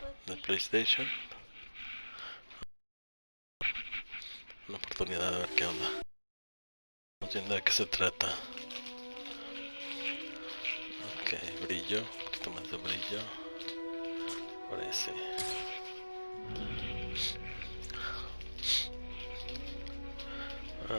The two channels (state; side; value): inverted; both; correlation -1.00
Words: de PlayStation. Una oportunidad de ver qué onda. Vamos viendo de qué se trata. Ok, brillo, un poquito más de brillo. Parece.